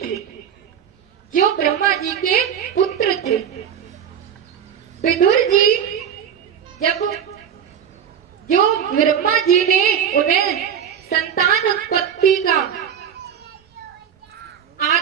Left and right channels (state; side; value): quieter; left; 8.4 dB